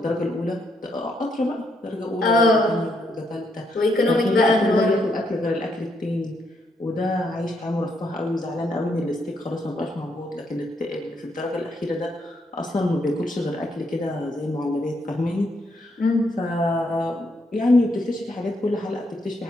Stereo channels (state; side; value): normal; both; correlation 0.76